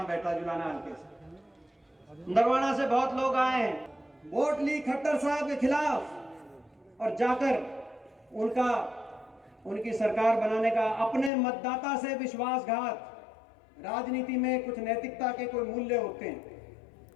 बैठा? जुलाना हल्के से, नरवाना से बहुत लोग आए हैं, वोट ली खट्टर साहब के खिलाफ, और जाकर उनकी सरकार बनाने का अपने मतदाता से विश्वासघात। राजनीति में कुछ नैतिकता के कोई मूल्य होते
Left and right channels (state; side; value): drops out; right; at 11.3 s